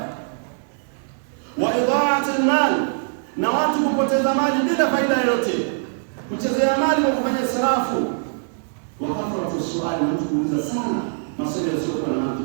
Wa idha'at al-mal, na watu kupoteza mali bila faida yoyote, kuchezea mali kwa kufanya israfu. Wa kathratu su'ali, mtu kuuliza sana maswali yasiyokuwa na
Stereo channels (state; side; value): silent; left; digital silence